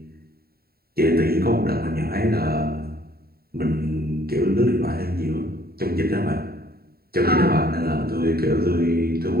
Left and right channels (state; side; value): late; left; 0.45 ms